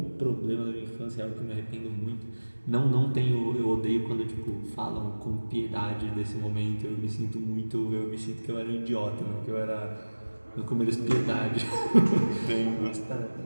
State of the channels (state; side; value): inverted; both; correlation -1.00